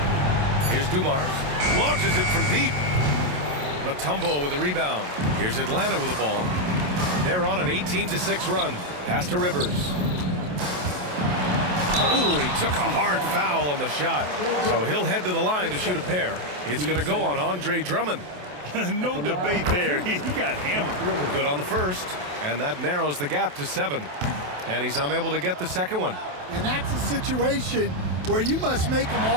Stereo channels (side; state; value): left; late; 27 ms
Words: Here's Dumars. Launches it from deep. Mutombo with a rebound. Here's Atlanta with the ball. They're on an 18-6 run. Pass to Rivers. Ooh, he took a hard foul on the shot. So he'll head to the line to shoot a pair. It's going to go on Andre Drummond. No debate there. He got hammered. Good on the first. And that narrows the gap to 7. And he's unable to get the second one. And that's a situation where you must make them